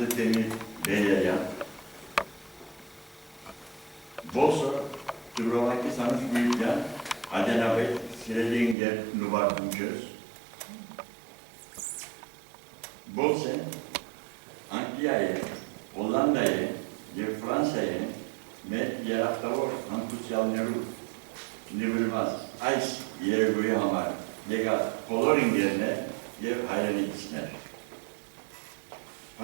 Demir Beleriyan, Boso, Dubrovaki Sanıç Büyükyan, Adenabey, Sireli İnger Nubar Bunköz, Bolsen, Anglia'ya, Hollanda'ya ve Fransa'ya met yaraktavor antusyalneru nivrilmaz ice yere göğe hamar lega coloring yerine yev hayran ikisiner.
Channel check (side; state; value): left; drops out; at 8.8 s